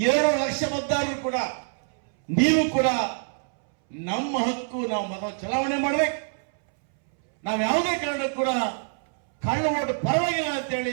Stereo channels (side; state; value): left; silent; 62 dB below the other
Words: ಲಕ್ಷ ಮತದಾರರು ಕೂಡ, ನೀವು ಕೂಡ ನಮ್ಮ ಹಕ್ಕು, ನಾವು ಮತ ಚಲಾವಣೆ ಮಾಡಬೇಕು. ನಾವು ಯಾವುದೇ ಕಾರಣಕ್ಕೂ ಕೂಡ ಕಳ್ಳ ಓಟ್ ಪರವಾಗಿಲ್ಲ